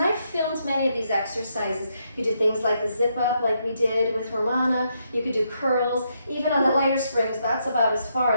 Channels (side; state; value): both; inverted; correlation -0.78